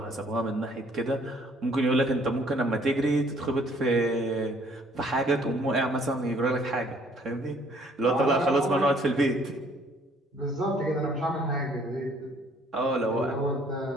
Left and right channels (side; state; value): both; normal; correlation 0.61